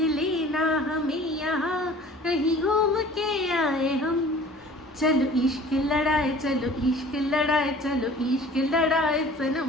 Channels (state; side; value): normal; both; correlation 0.47